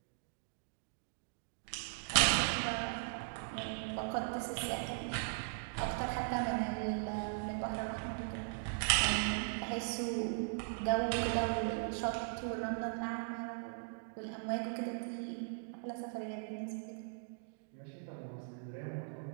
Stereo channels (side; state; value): left; silent; digital silence